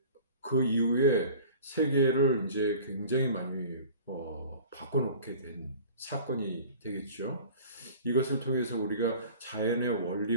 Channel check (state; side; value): inverted; both; correlation -0.43